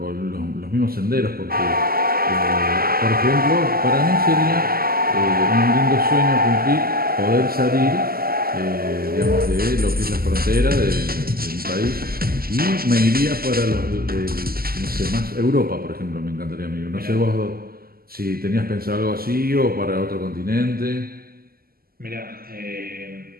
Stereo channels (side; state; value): left; late; 0.43 ms